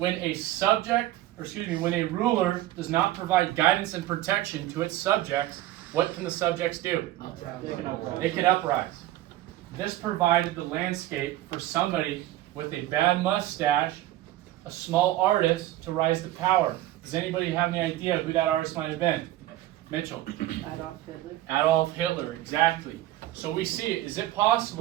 a when a ruler does not provide guidance and protection to its subjects, what can the subjects do? They can uprise. This provided the landscape for somebody with a bad mustache, a small artist, to rise to power. Does anybody have any idea who that artist might have been? Mitchell. Adolf Hitler. Adolf Hitler, exactly. So we see it. Is it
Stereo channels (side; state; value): left; quieter; 15.0 dB